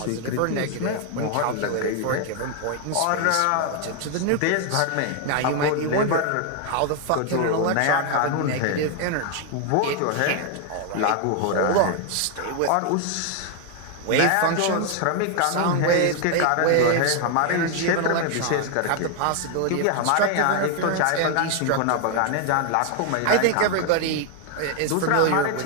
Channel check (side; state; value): both; different; correlation 0.00